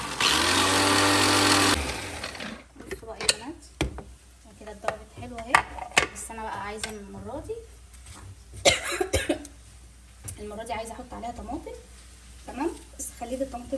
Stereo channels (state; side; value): identical; both; correlation 1.00